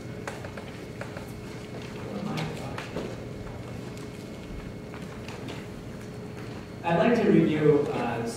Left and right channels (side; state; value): both; identical; correlation 1.00